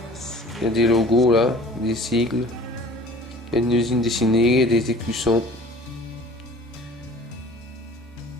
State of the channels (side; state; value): both; normal; correlation 0.47